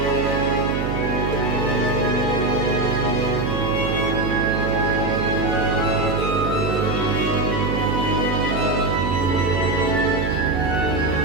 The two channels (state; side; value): noise; right; hum, 1 dB below the sound